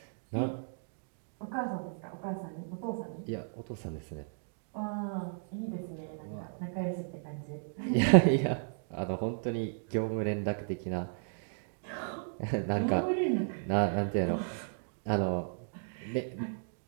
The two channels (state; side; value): silent; left; digital silence